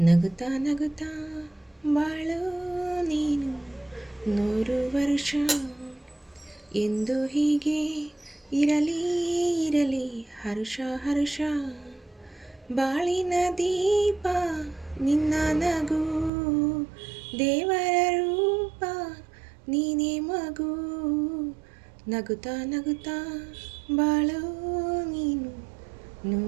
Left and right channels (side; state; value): left; drops out; at 16.3 s